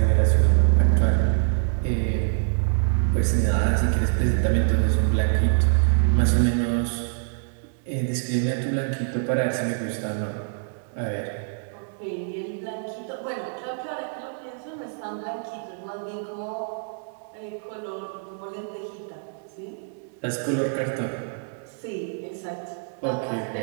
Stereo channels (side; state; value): left; silent; digital silence